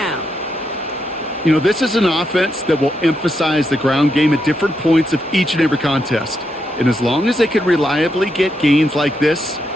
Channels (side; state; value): both; normal; correlation 0.82